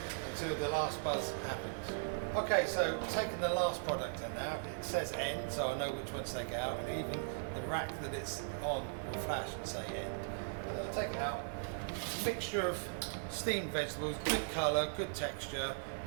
until the last buzz happens. Okay, so taking the last product in now, it says end, so I know which one to take out, and even the rack that it's on will flash and say end. I'll take it out. Mixture of steamed vegetables, good colour, good texture,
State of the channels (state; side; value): silent; left; digital silence